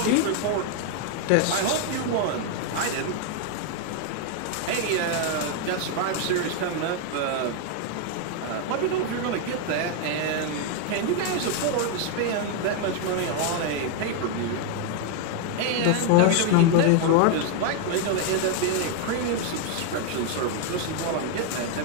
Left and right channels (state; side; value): different; both; correlation 0.01